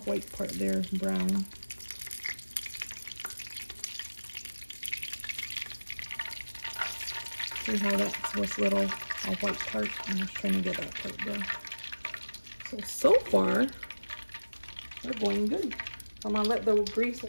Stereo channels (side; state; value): both; inverted; correlation -1.00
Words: part there brown. See how that's this little white part? I'm just trying to get that part brown. So far, they're going good. I'm going to let the grease